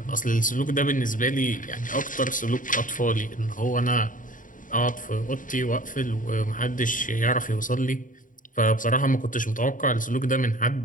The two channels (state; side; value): late; right; 0.39 ms